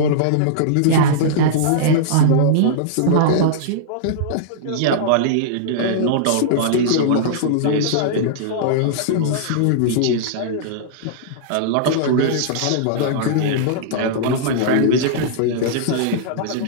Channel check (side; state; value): both; different; correlation -0.02